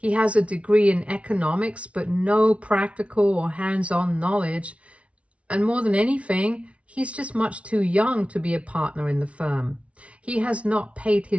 has a degree in economics, but no practical or hands-on knowledge. And more than anything, he's just much too young to be a partner in the firm. He has not paid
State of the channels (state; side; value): late; left; 0.062 ms